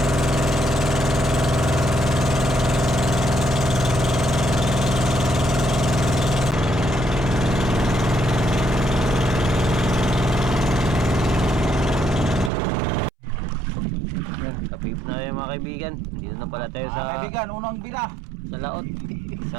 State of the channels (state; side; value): drops out; left; at 12.5 s